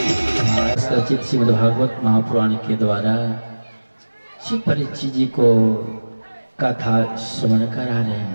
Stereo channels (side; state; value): both; inverted; correlation -1.00